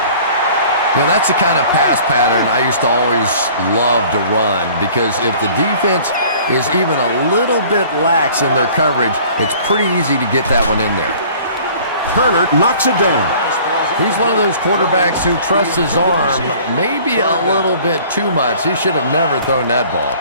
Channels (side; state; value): both; inverted; correlation -0.50